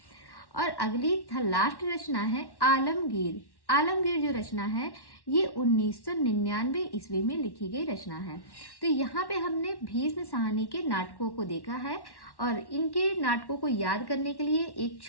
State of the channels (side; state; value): right; late; 1.1 ms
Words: और अगली लास्ट रचना है आलमगीर। आलमगीर जो रचना है ये 1999 ईस्वी में लिखी गई रचना है। तो यहाँ पे हमने भीष्म शाहनी के नाटकों को देखा है और इनके नाटकों को याद करने के लिए एक